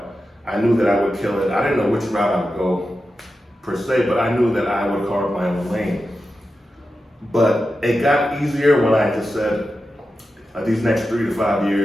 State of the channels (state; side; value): normal; both; correlation 0.91